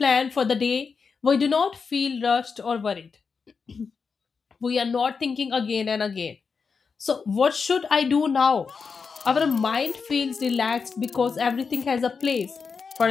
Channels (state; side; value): quieter; right; 5.4 dB